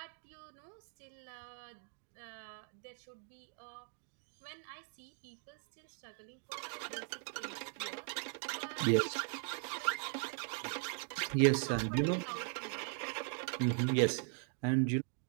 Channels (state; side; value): silent; left; 51 dB below the other